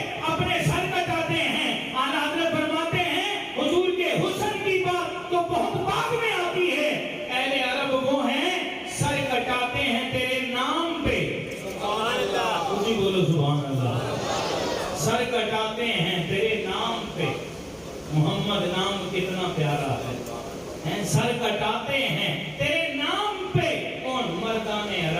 اپنے سر کٹاتے ہیں. اعلیٰ حضرت فرماتے ہیں حضور کے حسن کی بات تو بہت بعد میں آتی ہے. اہل عرب وہ ہیں سر کٹاتے ہیں تیرے نام پہ. سبحان اللہ, اسی بولو سبحان اللہ. سر کٹاتے ہیں تیرے نام پہ. محمد نام کتنا پیارا ہے, سر کٹاتے ہیں تیرے نام پہ. کون, مردان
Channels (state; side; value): identical; both; correlation 1.00